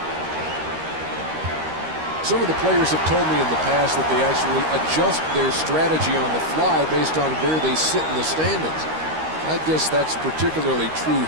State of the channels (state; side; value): late; left; 13 ms